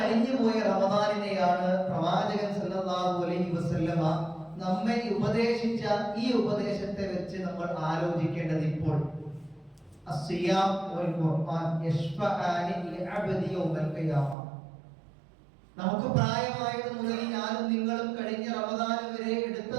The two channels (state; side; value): drops out; left; at 14.4 s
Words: പോയ റമദാനിനെയാണ് പ്രവാചകൻ സല്ലല്ലാഹു അലൈഹി വസല്ലമ നമ്മെ ഉപദേശിച്ച ഈ ഉപദേശത്തെ വെച്ച് നമ്മൾ ആലോചിക്കേണ്ടത് ഇപ്പോൾ അസ്സിയാം വൽ ഖുർആൻ യശ്ഫഅനി ലിഅബ്ദി യൗമൽ ഖിയാമ. നമുക്ക് പ്രായമായത് മുതൽ ഞാനും നിങ്ങളും കഴിഞ്ഞ റമദാൻ വരെ എടുത്ത